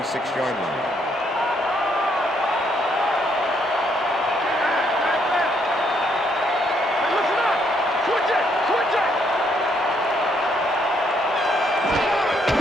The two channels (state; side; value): normal; both; correlation 0.72